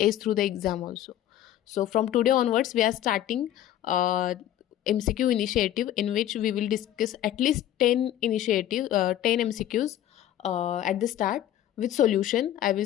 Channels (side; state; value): right; quieter; 12.1 dB